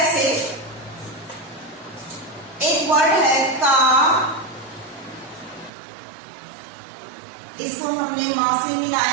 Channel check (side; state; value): left; drops out; at 5.7 s